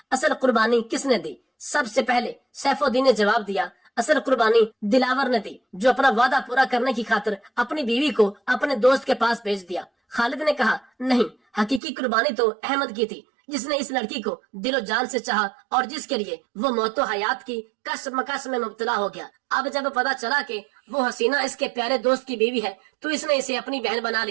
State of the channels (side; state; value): left; drops out; at 11.8 s